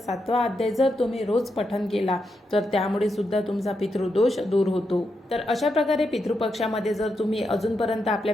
अध्याय जर तुम्ही रोज पठण केला तर त्यामुळे सुद्धा तुमचा पितृदोष दूर होतो। तर अशा प्रकारे पितृपक्षामध्ये जर तुम्ही अजूनपर्यंत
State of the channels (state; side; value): normal; both; correlation 0.84